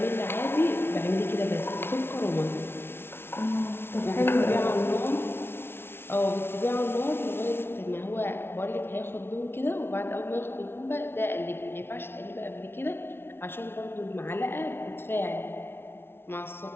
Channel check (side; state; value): right; late; 0.11 ms